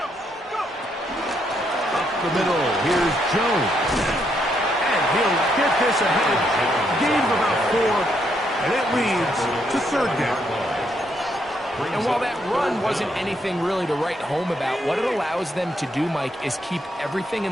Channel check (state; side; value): normal; both; correlation 0.75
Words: Up the middle, here's Jones. And he'll get this ahead. Gain of about 4, and it leads to 3rd down. And while that run wasn't anything really to write home about, what it allows them to do, Mike, is keep everything